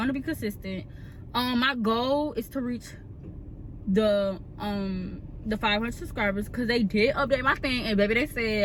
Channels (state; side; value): identical; both; correlation 1.00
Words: be consistent. My goal is to reach the 500 subscribers, because they did update my thing, and baby, they